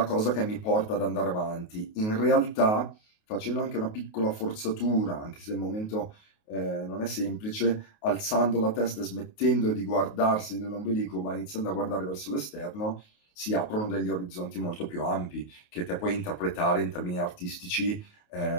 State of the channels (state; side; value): late; right; 28 ms